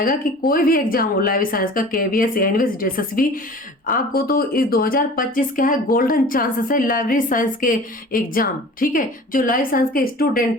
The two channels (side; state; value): both; normal; correlation 0.42